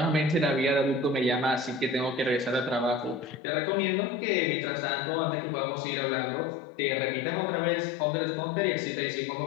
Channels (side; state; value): right; drops out; at 3.4 s